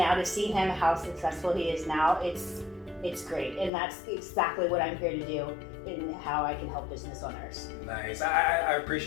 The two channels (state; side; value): drops out; right; at 3.7 s